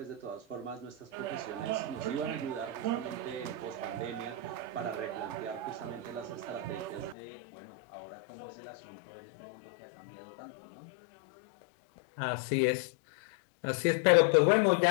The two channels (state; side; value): drops out; right; at 7.2 s